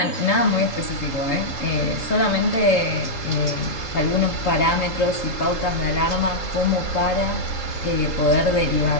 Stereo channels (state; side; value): late; right; 3.8 ms